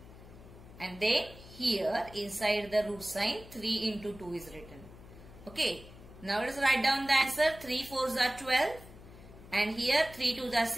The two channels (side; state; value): left; noise; hum, 18 dB below the sound